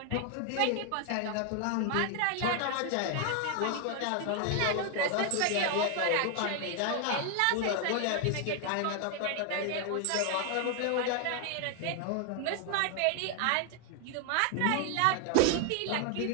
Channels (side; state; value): both; different; correlation 0.00